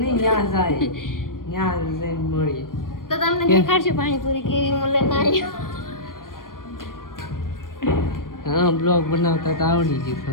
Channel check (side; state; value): right; late; 0.91 ms